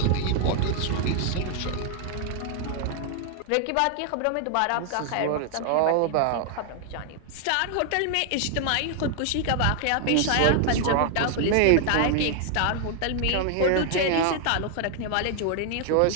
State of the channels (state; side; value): different; both; correlation 0.00